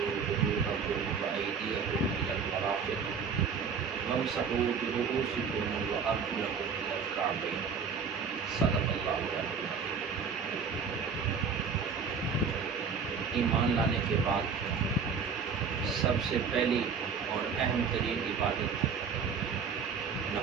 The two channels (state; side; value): quieter; left; 5.8 dB